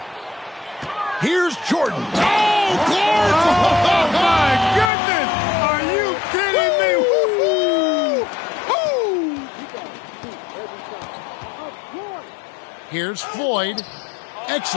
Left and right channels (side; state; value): right; drops out; at 4.9 s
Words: Here's Jordan. Oh, Clark! Oh, my goodness! Are you kidding me? Woo-hoo! Here's Floyd.